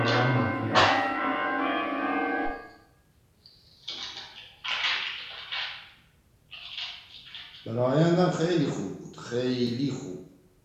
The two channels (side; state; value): both; identical; correlation 1.00